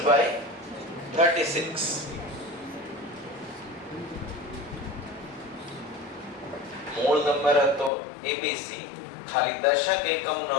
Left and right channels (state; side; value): drops out; right; at 7.9 s